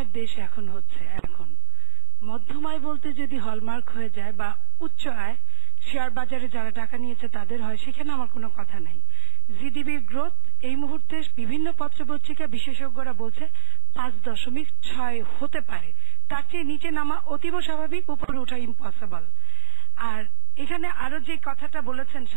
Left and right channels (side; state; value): left; silent; digital silence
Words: দেশ এখন হচ্ছে, এখন মধ্যমায় বলতে যদি হলমার্ক হয়ে যায় বা উচ্চ আয় শেয়ার বাজারে যারা টাকা নিয়েছে তাদের হয়, সেখানে আমার কোনো কথা নাই। জিডিপির গ্রোথ এই মুহূর্তে বিভিন্ন পত্রপত্রিকা বিশেষজ্ঞরা বলছে 5.6 হতে পারে, তার চেয়ে নিচে নামা অতীব স্বাভাবিক, উপরে ওঠা ইম্পসিবল। আর এখানে আরো যে কথাটা বলেছেন